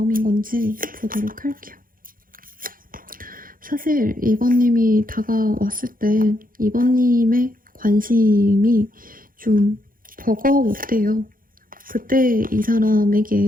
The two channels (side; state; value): left; late; 0.41 ms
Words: 건지 보도록 할게요. 사실 이번님이 다가왔을 때 이번님의 관심이 좀 버거웠대요. 그때 이